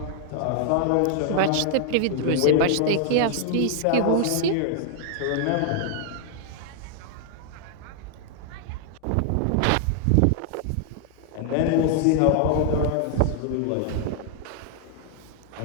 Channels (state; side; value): different; both; correlation 0.00